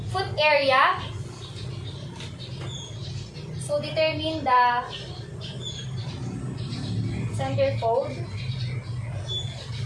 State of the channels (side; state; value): both; identical; correlation 1.00